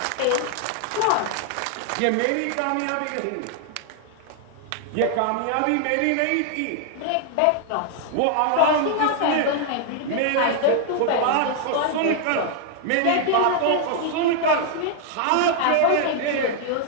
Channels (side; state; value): both; different; correlation 0.00